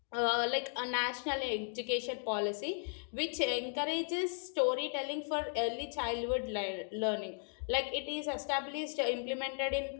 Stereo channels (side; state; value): right; silent; 54 dB below the other